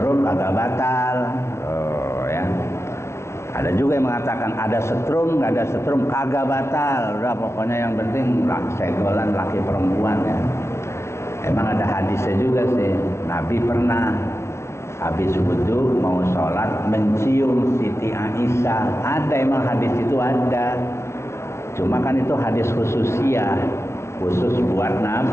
nggak batal. Oh ya. Ada juga yang mengatakan ada setrum, nggak ada setrum, kagak batal. Udah pokoknya yang penting senggolan laki perempuan ya. Emang ada hadisnya juga sih. Nabi pernah habis wudu mau sholat mencium Siti Aisyah. Ada emang hadis itu ada. Cuma kan itu hadis khususiyah, khusus buat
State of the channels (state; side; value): late; right; 0.13 ms